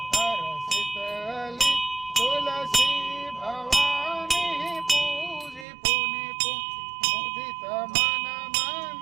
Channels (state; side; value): drops out; left; at 5.7 s